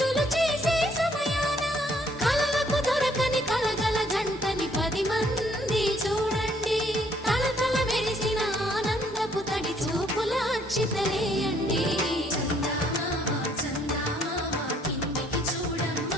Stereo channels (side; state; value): both; normal; correlation 0.65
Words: చేసే సమయాన కలలకు దొరకని కలగల జంటని 10 మంది చూడండి తలతల మెరిసిన ఆనందపు తడి చూపుల అక్షితలేయండి